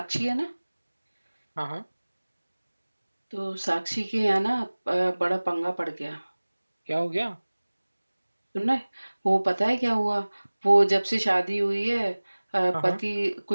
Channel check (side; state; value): both; inverted; correlation -1.00